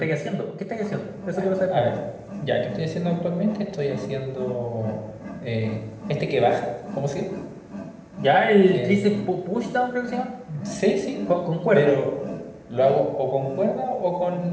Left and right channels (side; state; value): both; identical; correlation 1.00